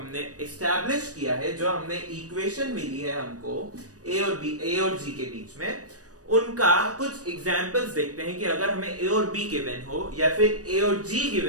एस्टैब्लिश किया है, जो हमने इक्वेशन मिली है हमको a और g के बीच में, उनका कुछ एग्जांपल्स देखते हैं कि अगर हमें a और b गिवन हो या फिर a और g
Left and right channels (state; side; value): late; left; 0.67 ms